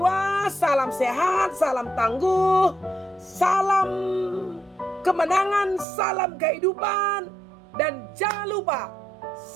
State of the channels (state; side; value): drops out; left; at 5.9 s